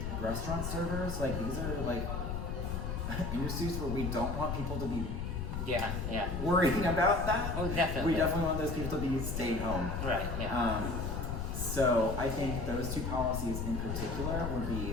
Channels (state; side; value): noise; left; rumble, 3 dB below the sound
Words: restaurant servers, these are industries where we don't want people to be Yeah. worrying about that. Oh, definitely. We definitely want those people to be staying home. Right. Yeah. So I think those two policies in particular would